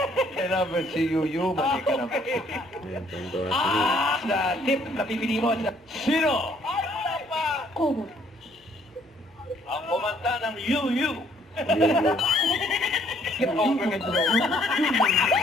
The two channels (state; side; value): normal; both; correlation 0.64